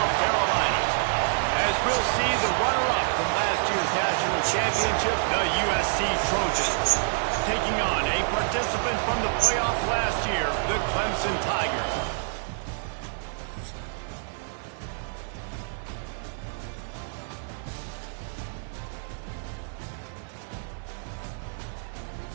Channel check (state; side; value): silent; left; digital silence